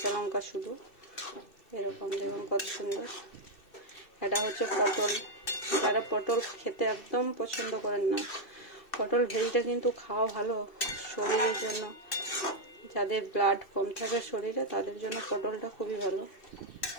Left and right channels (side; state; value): right; late; 2.6 ms